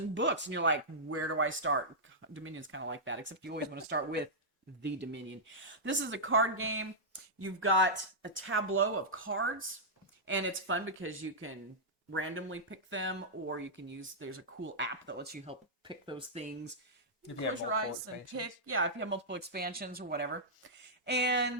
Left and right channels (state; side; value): normal; both; correlation -0.10